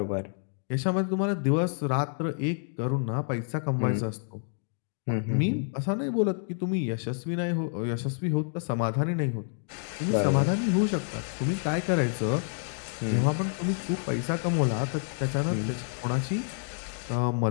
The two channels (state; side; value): silent; right; 59 dB below the other